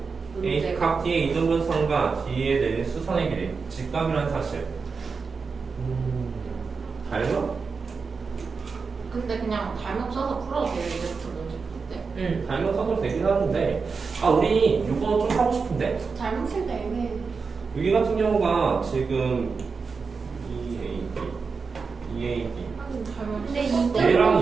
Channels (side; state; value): left; quieter; 4.9 dB